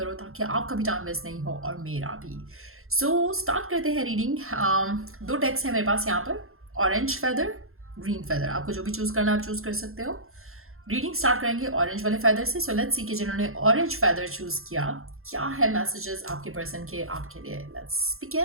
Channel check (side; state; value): left; late; 0.62 ms